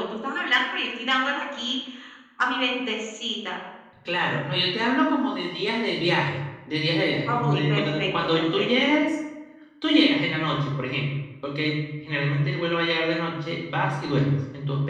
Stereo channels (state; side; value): identical; both; correlation 1.00